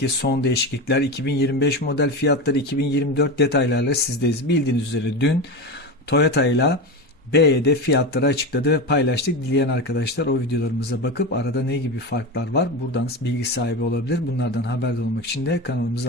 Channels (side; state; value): both; normal; correlation 0.21